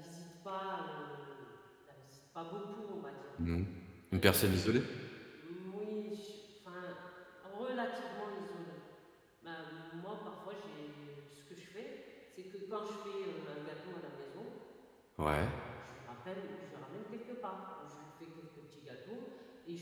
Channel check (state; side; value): identical; both; correlation 1.00